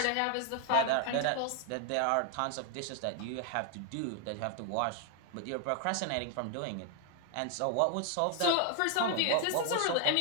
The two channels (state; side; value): different; both; correlation 0.00